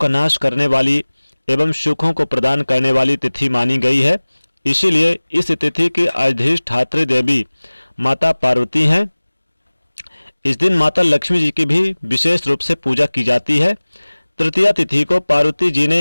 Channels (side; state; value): both; inverted; correlation -1.00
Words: नाश करने वाली एवं सुखों को प्रदान करने वाली तिथि मानी गई है। इसीलिए इस तिथि की अधिष्ठात्री देवी माता पार्वती हैं। इस दिन माता लक्ष्मी जी की भी विशेष रूप से पूजा की जाती है। तृतीया तिथि को पार्वती जी